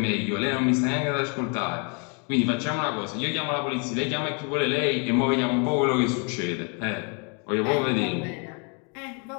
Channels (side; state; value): right; quieter; 36.3 dB